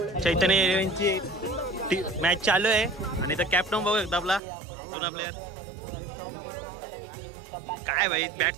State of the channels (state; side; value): drops out; left; at 4.4 s